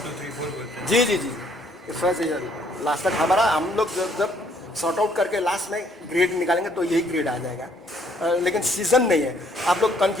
2 3 4 बोलते हैं। जी फर्स्ट लास्ट तक हमारा, हम लोग जब सॉर्ट आउट करके लास्ट में ग्रेड निकालेंगे तो यही ग्रेड आ जाएगा। लेकिन सीजन नहीं है, आप लोग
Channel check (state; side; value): normal; both; correlation 0.65